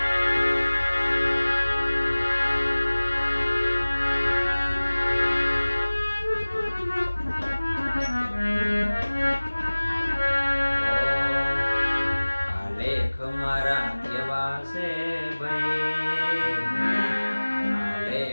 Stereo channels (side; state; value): both; inverted; correlation -1.00